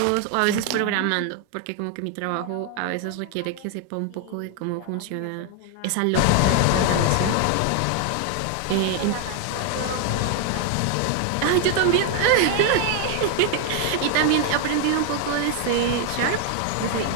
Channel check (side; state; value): both; different; correlation 0.00